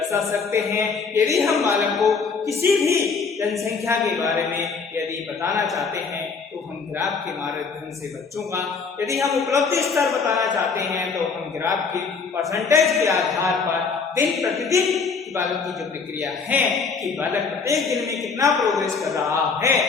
सकते हैं। यदि हम बालक को किसी भी जनसंख्या के बारे में यदि बताना चाहते हैं तो हम ग्राफ के माध्यम से बच्चों का, यदि हम उपलब्धि स्तर बताना चाहते हैं तो हम ग्राफ के परसेंटेज के आधार पर दिन प्रतिदिन बालक की जो प्रक्रिया है कि बालक प्रत्येक दिन में कितना प्रोग्रेस कर रहा है,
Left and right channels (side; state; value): right; quieter; 5.1 dB